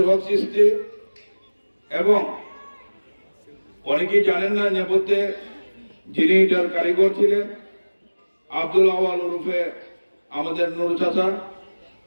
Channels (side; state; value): both; inverted; correlation -1.00